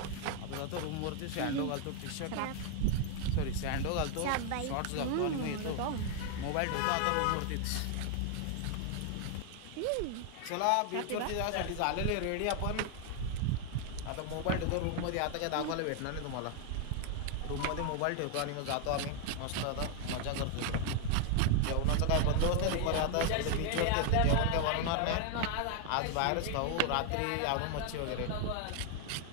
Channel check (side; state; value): both; different; correlation 0.00